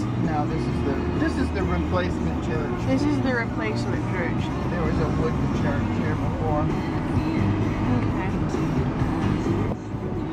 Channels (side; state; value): both; identical; correlation 1.00